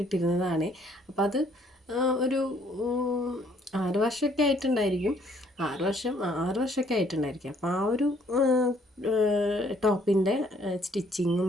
ഇട്ടിരുന്നതാണ്. അപ്പോൾ അത് ഒരു 6 വർഷമൊക്കെ ആയിട്ടുണ്ടായിരിക്കും. 6 വർഷമൊക്കെ ആയിട്ടുണ്ടായിരിക്കും. അപ്പോൾ ആ ഒരു ടോപ്പിൻ്റെ സ്റ്റിച്ചിങ്ങും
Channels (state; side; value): normal; both; correlation 0.64